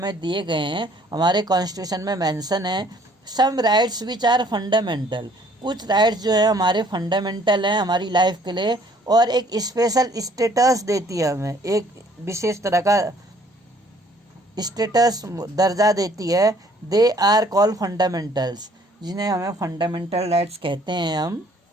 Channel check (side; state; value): both; normal; correlation 0.59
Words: दिए गए हैं हमारे कॉन्स्टिट्यूशन में मेंशन है। सम राइट्स विच आर फंडामेंटल, कुछ राइट्स जो है हमारे फंडामेंटल हैं हमारी लाइफ के लिए, और एक स्पेशल स्टेटस देती है हमें, एक विशेष तरह का स्टेटस दर्जा देती है। दे आर कॉल्ड फंडामेंटल्स, जिन्हें हमें फंडामेंटल राइट्स कहते हैं हम।